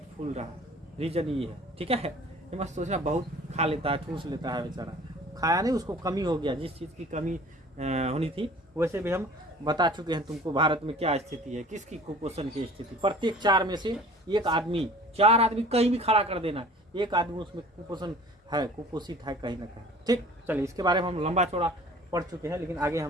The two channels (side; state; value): both; normal; correlation 0.47